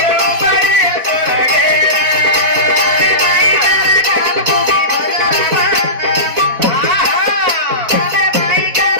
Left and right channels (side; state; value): left; late; 4.1 ms